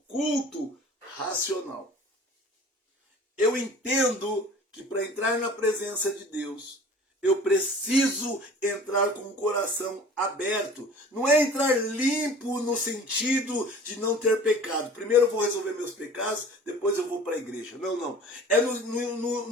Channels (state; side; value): normal; both; correlation 0.44